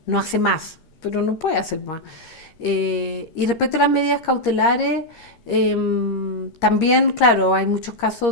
no hace más, pero no puede hacer más. Y respecto a las medidas cautelares, también, claro, hay muchos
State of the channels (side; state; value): right; late; 13 ms